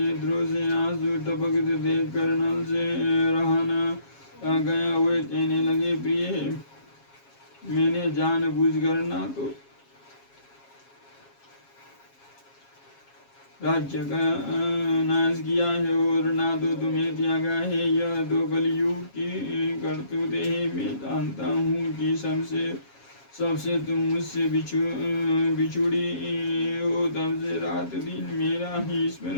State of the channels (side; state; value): right; late; 7.3 ms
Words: से आंसू टपकते देख कर नल से रहा न गया। वे कहने लगे, प्रिय, मैंने जानबूझकर ना तो राज्य का नाश किया है और ना तो तुम्हें त्यागा है। यह तो कलयुग की करतूत है। मैं जानता हूँ कि सबसे तुम मुझसे बिछुड़ी हो, तब से रात दिन मेरा ही